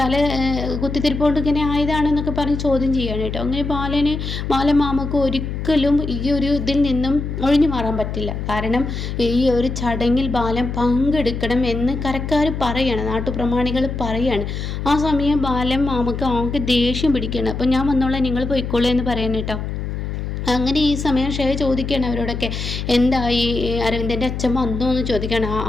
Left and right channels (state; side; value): noise; left; hum, 5 dB below the sound